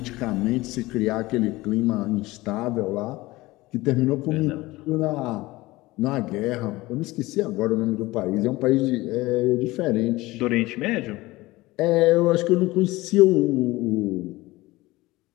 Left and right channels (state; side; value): quieter; right; 19.8 dB